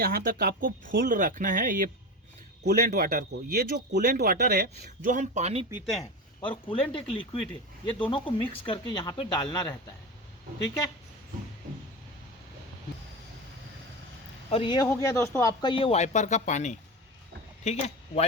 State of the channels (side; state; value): both; normal; correlation 0.23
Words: तक आपको फुल रखना है ये कूलेंट वाटर को। ये जो कूलेंट वाटर है, जो हम पानी पीते हैं, और कूलेंट एक लिक्विड है, ये दोनों को मिक्स करके यहाँ पे डालना रहता है, ठीक है। और ये हो गया दोस्तों आपका ये वाइपर का पानी, ठीक है।